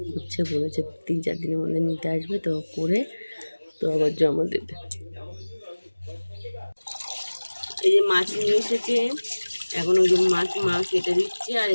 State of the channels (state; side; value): inverted; both; correlation -1.00